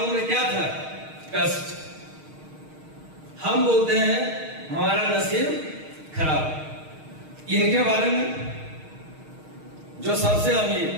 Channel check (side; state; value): left; late; 6.4 ms